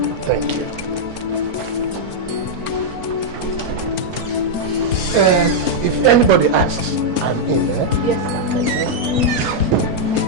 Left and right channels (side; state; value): left; late; 4.4 ms